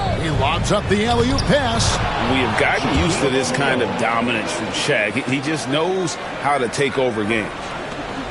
He lobs up the alley-oop pass. We have gotten used to this kind of dominance from Shaq. He just knows how to take over games.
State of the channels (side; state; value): both; identical; correlation 1.00